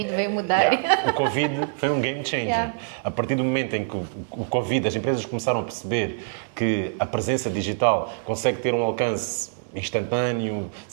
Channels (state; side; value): silent; left; 62 dB below the other